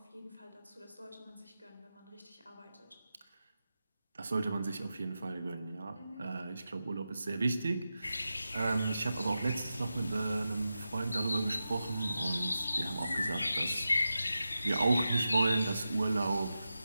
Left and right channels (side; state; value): both; inverted; correlation -0.91